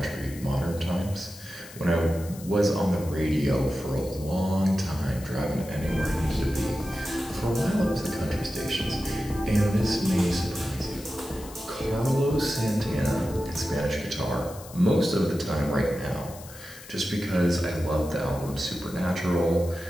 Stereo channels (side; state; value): left; noise; hiss, 17 dB below the sound